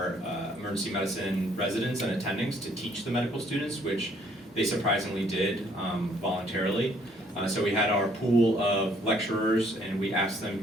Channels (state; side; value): normal; both; correlation 0.64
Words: emergency medicine residents and attendings to teach the medical students, which they surprisingly did voluntarily. So we had our pool of lecturers, and we asked